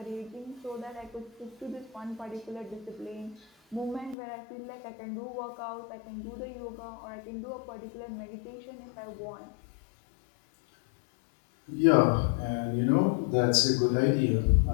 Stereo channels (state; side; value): drops out; right; at 4.2 s